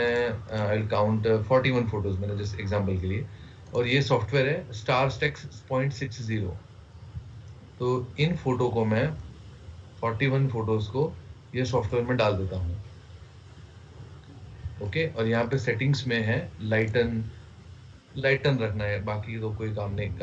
आई विल काउंट 41 फोटोज मैंने जस्ट एग्जांपल के लिए। और ये सॉफ्टवेयर है स्टार स्टेक्स 0.60। तो इन फोटो को मैं 41 फोटोज को ये सॉफ्टवेयर में डाल देता हूँ। ओके, और यहाँ पे सेटिंग्स में है लाइटन रखना है, बाकी तो कोई काम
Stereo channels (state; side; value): identical; both; correlation 1.00